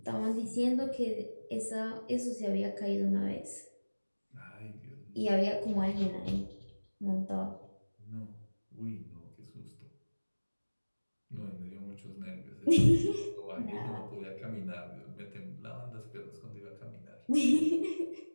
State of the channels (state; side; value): inverted; both; correlation -1.00